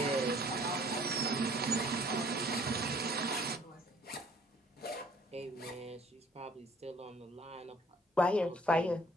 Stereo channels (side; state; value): both; normal; correlation 0.57